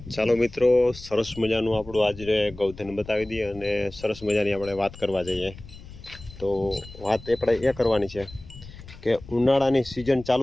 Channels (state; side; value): noise; left; rumble, 17 dB below the sound